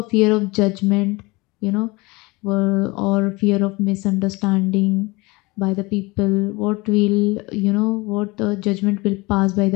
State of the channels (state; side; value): quieter; right; 24.0 dB